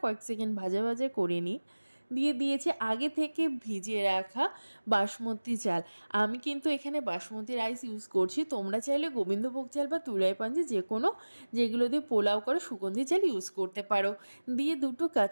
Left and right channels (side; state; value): both; inverted; correlation -1.00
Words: কয়েক সেকেন্ড ভাজা ভাজা করে নিই। দিয়ে দিয়েছে আগে থেকে ভিজিয়ে রাখা বাসমতি চাল। আমি কিন্তু এখানে বাসমতি রাইস ইউজ করছি, তোমরা চাইলে গোবিন্দভোগ চাল বা তুলাই পাঞ্জি যে কোনো যেগুলো দিয়ে পোলাও করে সুগন্ধি চাল ইউজ করতে পারো। দিয়ে দুটো